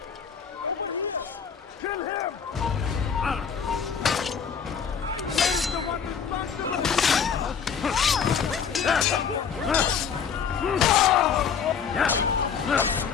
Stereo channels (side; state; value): right; quieter; 6.9 dB